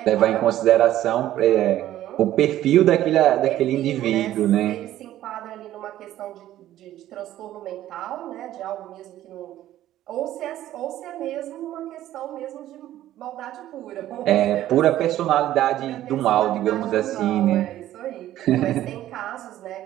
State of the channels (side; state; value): left; quieter; 13.4 dB